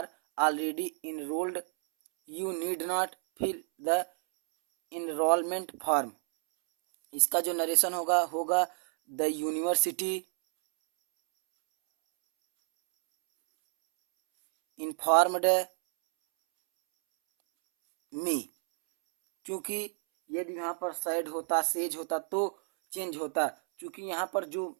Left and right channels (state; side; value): silent; left; 58 dB below the other